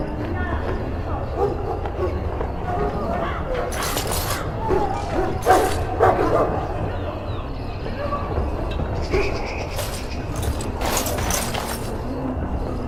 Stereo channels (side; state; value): both; identical; correlation 1.00